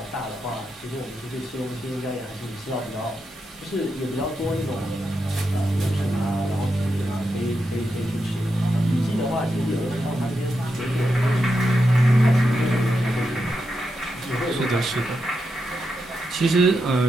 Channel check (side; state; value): both; normal; correlation 0.85